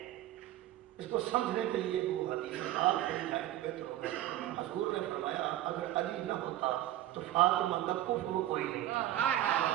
اس کو سمجھنے کے لیے وہ حدیث آپ مل جائے تو بہتر ہوگا۔ حضور نے فرمایا اگر علی نہ ہوتا تو فاطمہ کا کفر کوئی نہیں تھا،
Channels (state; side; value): quieter; left; 13.9 dB